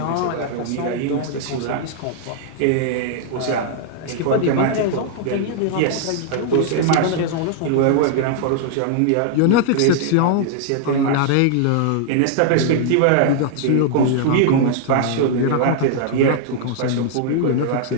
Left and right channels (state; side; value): different; both; correlation -0.01